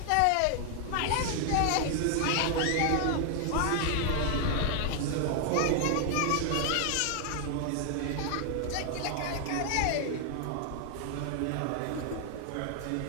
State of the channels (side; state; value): both; different; correlation 0.00